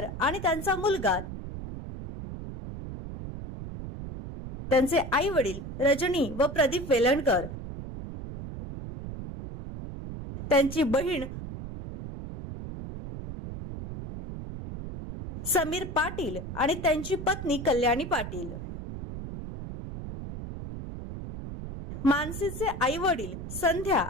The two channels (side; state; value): right; noise; rumble, 9 dB below the sound